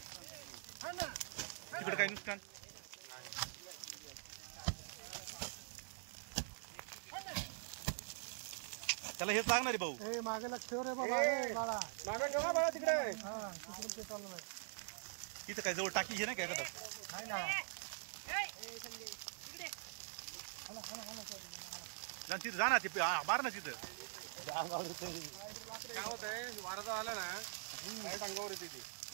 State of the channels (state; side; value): silent; left; digital silence